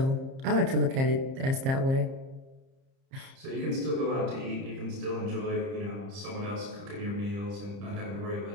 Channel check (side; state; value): left; late; 30 ms